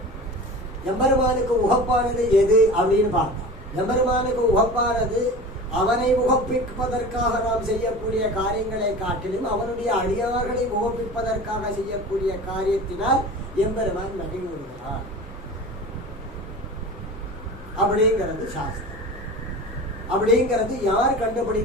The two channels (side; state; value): both; normal; correlation 0.35